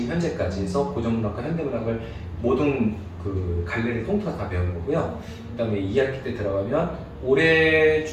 현재까지 해서 고전문학과 현대문학을 모든 그 갈래를 통틀어서 다 배우는 거고요. 그다음에 2학기 때 들어가면 올해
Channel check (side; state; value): both; identical; correlation 1.00